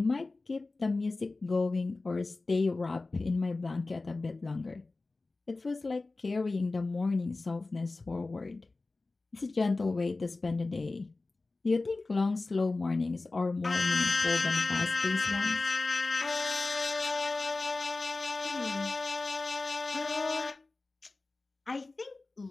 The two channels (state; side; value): quieter; right; 3.4 dB